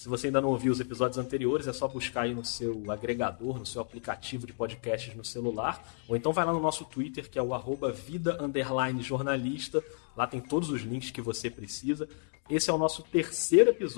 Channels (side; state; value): right; silent; 57 dB below the other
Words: você ainda não ouviu os episódios anteriores, é só buscar aí no seu agregador, no seu aplicativo de podcasts no celular, ou então vai lá no nosso Twitter, que é o @vida_jornalista, lá tem todos os links que você precisa. Esse é o nosso terceiro